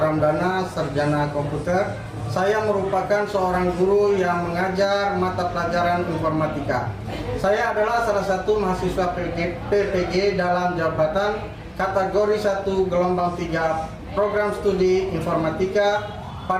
sarjana komputer. Saya merupakan seorang guru yang mengajar mata pelajaran informatika. Saya adalah salah satu mahasiswa PPG dalam jabatan kategori 1 gelombang 3 program studi informatika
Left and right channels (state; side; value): identical; both; correlation 1.00